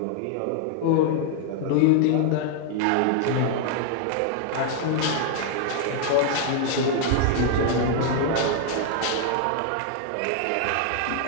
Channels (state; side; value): different; both; correlation 0.00